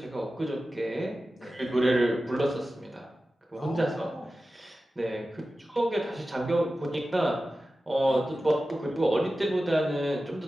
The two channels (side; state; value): both; normal; correlation 0.94